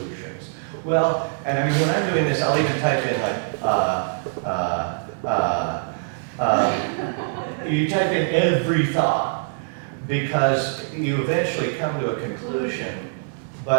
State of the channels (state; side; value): silent; left; digital silence